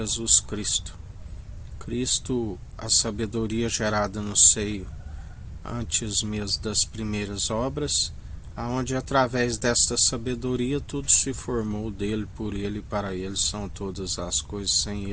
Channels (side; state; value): both; identical; correlation 1.00